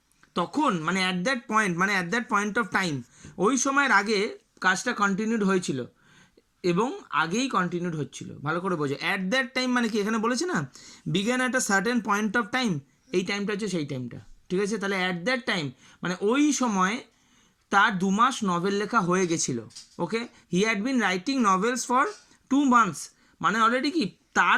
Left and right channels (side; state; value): both; identical; correlation 1.00